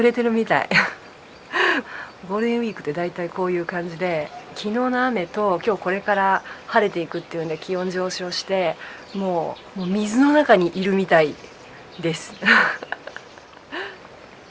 れてるみたい。ゴールデンウィークって大体こういう感じで、昨日の雨と今日これから晴れていくっていうんで気温上昇して、もう水の中にいるみたいです。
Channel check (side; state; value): both; identical; correlation 1.00